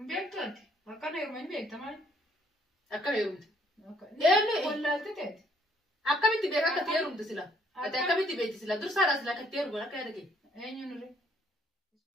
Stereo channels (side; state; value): both; normal; correlation 0.65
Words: أكان يومين بيكتمال أكان يوم يعني ولا تتات أكمل تبيعك كتير يوم تسلا أكمل تبيع تسلا درس هذا سلا كتير ولا كذا كي أين نوري